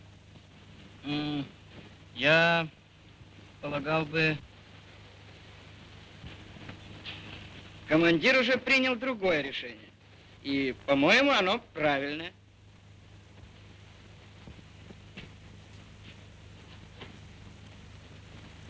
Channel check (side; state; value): both; identical; correlation 1.00